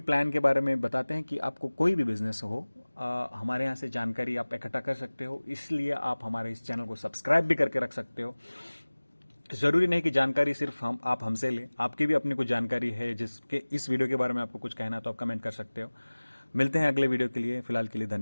के बारे में बताते हैं कि आपको कोई भी बिजनेस हो, हमारे यहाँ से जानकारी आप इकट्ठा कर सकते हो। इसलिए आप हमारे इस चैनल को सब्सक्राइब भी करके रख सकते हो। जरूरी नहीं कि जानकारी सिर्फ आप हमसे लें, आपकी भी अपनी कुछ जानकारी है जिसके इस वीडियो के बारे में आपको कुछ कहना, तो आप कमेंट कर सकते हो। मिलते हैं अगले वीडियो के लिए। फिलहाल के लिए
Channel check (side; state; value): both; inverted; correlation -1.00